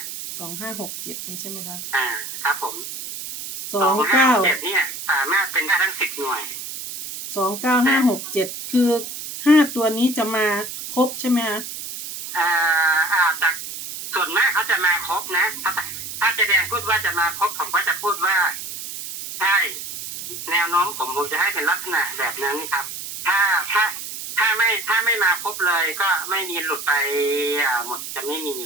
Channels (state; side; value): noise; right; hiss, 8 dB below the sound